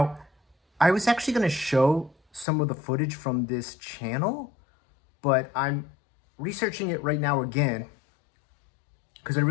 I was actually going to show some of the footage from this channel, but I'm researching it right now again because I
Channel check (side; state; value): right; drops out; at 2.5 s